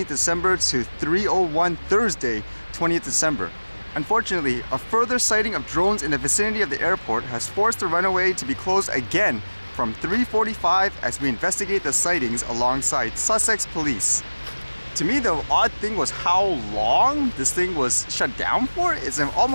December to 3:01 Thursday 20th December. Unfortunately, a further sighting of drones in the vicinity of the airport has forced the runway to be closed again from 3:45 as we investigate the sightings alongside Sussex Police. To me, the odd thing was how long this thing was shut down for. It's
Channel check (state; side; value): inverted; both; correlation -1.00